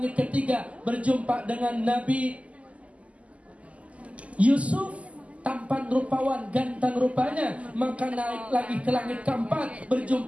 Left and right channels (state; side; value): late; left; 0.066 ms